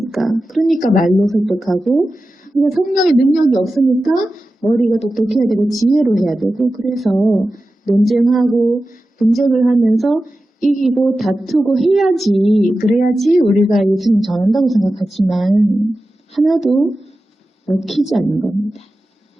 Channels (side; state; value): both; normal; correlation 0.93